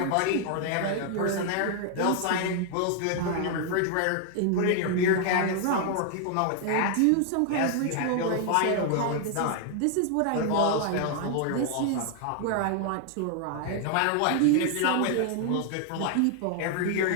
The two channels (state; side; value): different; both; correlation 0.00